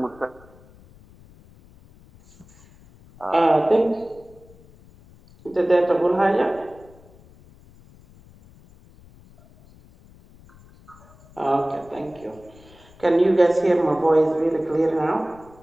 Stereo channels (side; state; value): left; noise; rumble, 25 dB below the sound